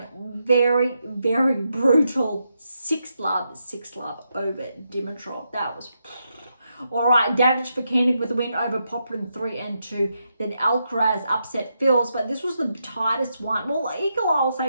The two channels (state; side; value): inverted; both; correlation -0.83